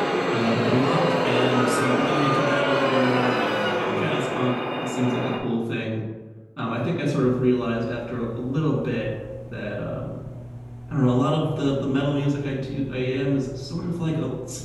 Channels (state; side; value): identical; both; correlation 1.00